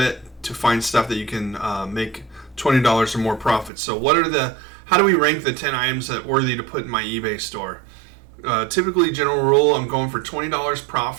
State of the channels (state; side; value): drops out; left; at 3.7 s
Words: to find stuff that you can make $20 or more profit. So how do we rank the 10 items that are worthy to put in my eBay store? Typically, general rule, I'm going for $20